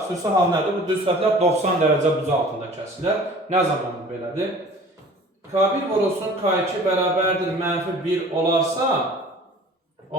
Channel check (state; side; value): normal; both; correlation 0.46